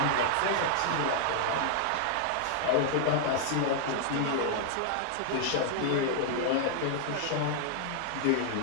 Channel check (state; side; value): different; both; correlation -0.01